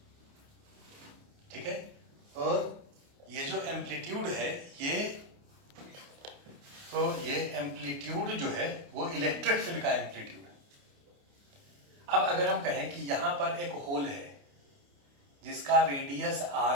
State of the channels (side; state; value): left; late; 29 ms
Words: ठीक है। और ये जो एम्पलीट्यूड है, ये एम्पलीट्यूड जो है वो इलेक्ट्रिक फील्ड का एम्पलीट्यूड है। अब अगर हम कहें कि यहां पर एक होल है जिसका रेडियस